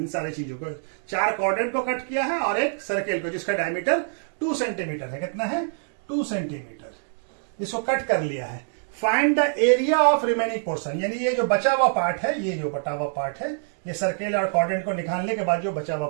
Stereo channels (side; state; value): left; silent; digital silence